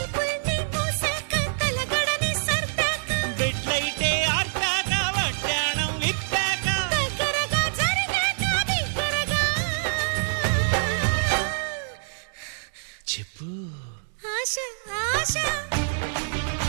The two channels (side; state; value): left; silent; digital silence